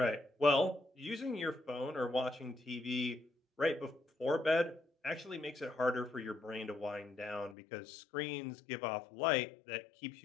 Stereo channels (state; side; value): drops out; right; at 7.6 s